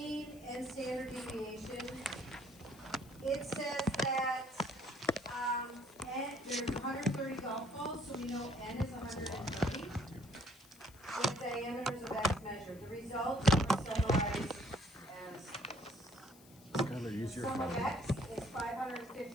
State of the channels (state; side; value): noise; left; hiss, 23 dB below the sound